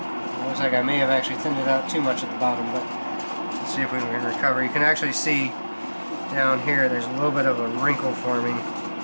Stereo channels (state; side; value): inverted; both; correlation -1.00